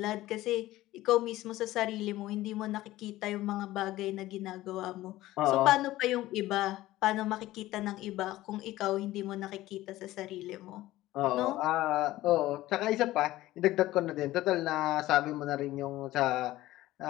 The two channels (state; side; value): quieter; right; 16.3 dB